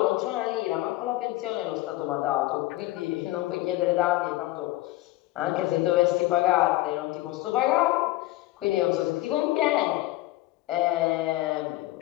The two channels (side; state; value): right; quieter; 17.5 dB